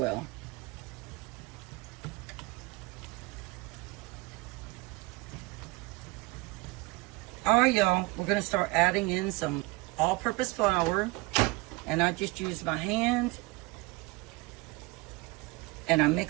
All right, y'all, we're going to start adding in some all-purpose flour. And I just use my hand and I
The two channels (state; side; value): quieter; left; 24.5 dB